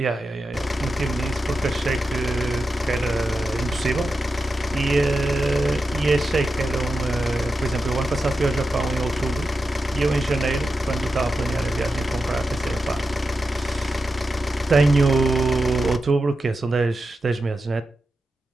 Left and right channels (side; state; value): both; normal; correlation 0.90